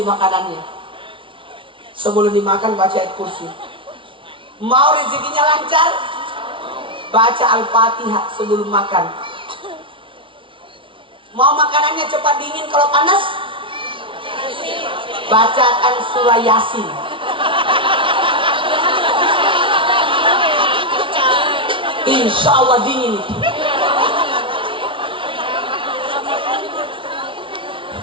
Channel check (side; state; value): left; late; 0.25 ms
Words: makanannya. Sebelum dimakan baca ayat kursi. Mau rezekinya lancar? Baca Al-Fatihah sebelum makan. Mau makanannya cepat dingin kalau panas? Bacakan surah Yasin. Insya Allah dingin.